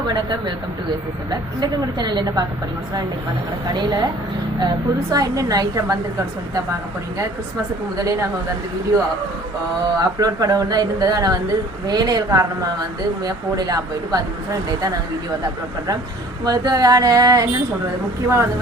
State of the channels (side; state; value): both; normal; correlation 0.51